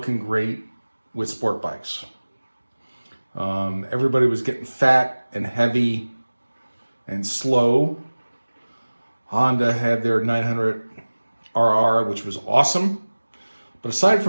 great with sport bikes. Everybody was getting fat and heavy and slow. Honda had their 900 RR, which was awesome. But aside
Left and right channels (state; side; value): inverted; both; correlation -1.00